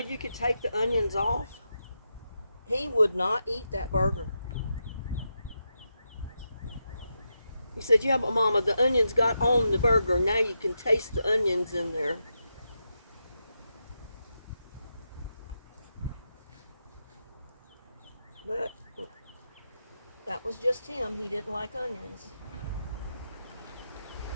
could take the onions off, he would not eat that burger. He said, yeah, but Mama, the onions got on the burger. Now you can taste the onions in there. But that was just him. He didn't like onions.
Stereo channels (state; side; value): inverted; both; correlation -0.86